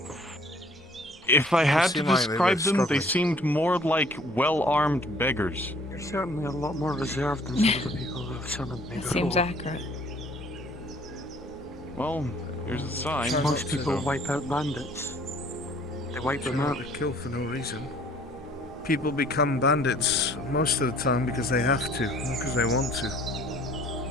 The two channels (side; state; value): both; normal; correlation 0.56